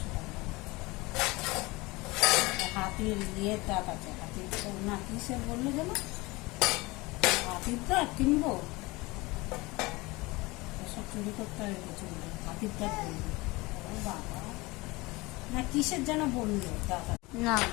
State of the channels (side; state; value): right; quieter; 22.9 dB